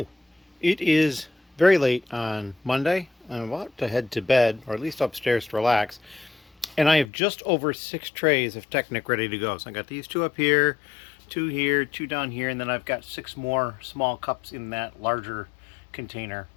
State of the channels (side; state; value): right; drops out; at 7.1 s